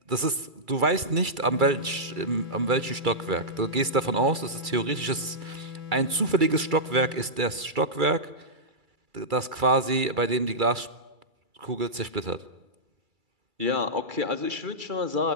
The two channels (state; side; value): late; left; 2.3 ms